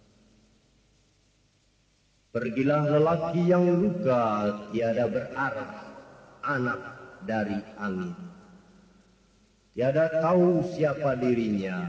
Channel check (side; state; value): both; identical; correlation 1.00